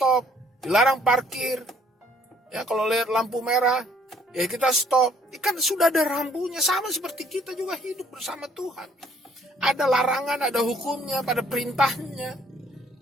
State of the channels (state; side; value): normal; both; correlation 0.62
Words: dilarang parkir. Ya, kalau lihat lampu merah, ya kita stop. Kan sudah ada rambunya, sama seperti kita juga hidup bersama Tuhan. Ada larangan, ada hukumnya, pada perintahnya.